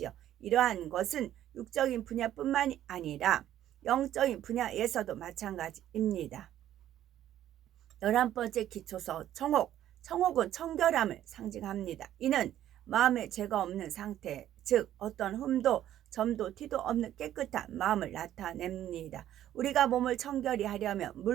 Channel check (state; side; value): quieter; left; 12.1 dB